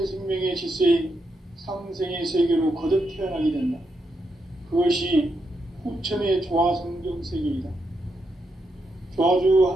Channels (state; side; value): normal; both; correlation 0.82